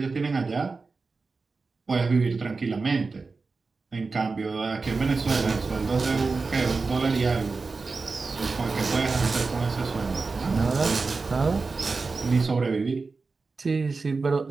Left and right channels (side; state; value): left; quieter; 4.2 dB